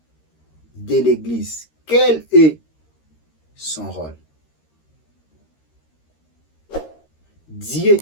de l'Église. Quel est son rôle? Dieu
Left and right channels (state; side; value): late; right; 13 ms